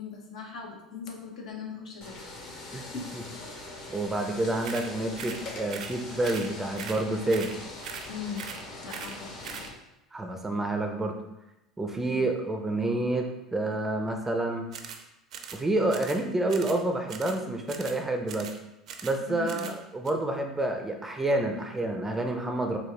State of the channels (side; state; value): both; normal; correlation 0.66